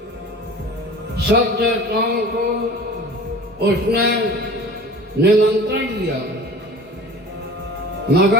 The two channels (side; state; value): both; normal; correlation 0.40